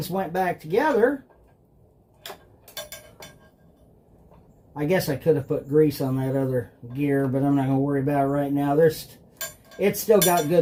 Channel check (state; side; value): identical; both; correlation 1.00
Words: went back together. I guess I could have put grease on that other gear, but I'm not going to worry about it right now. It's still got